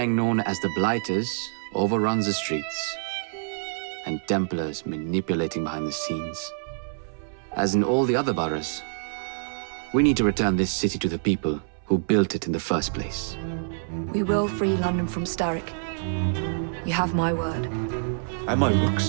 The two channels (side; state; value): left; silent; 61 dB below the other